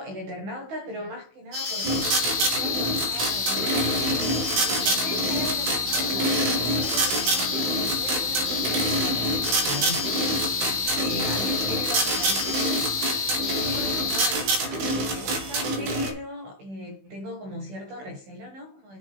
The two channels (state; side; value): late; left; 16 ms